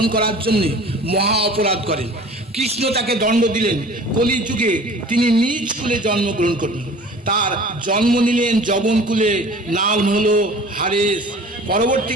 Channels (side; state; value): both; normal; correlation 0.44